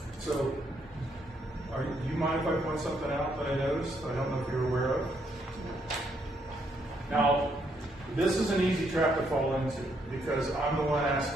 So, do you mind if I point something out that I noticed? I don't know if you're aware of. Now, this is an easy trap to fall into because I'm the one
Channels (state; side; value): normal; both; correlation 0.74